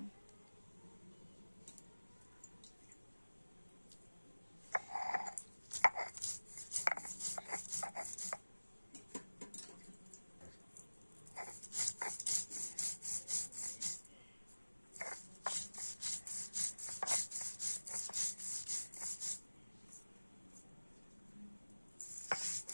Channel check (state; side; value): inverted; both; correlation -1.00